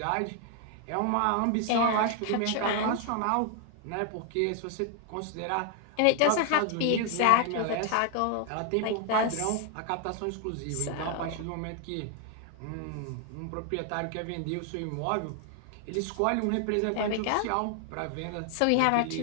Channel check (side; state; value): both; different; correlation 0.00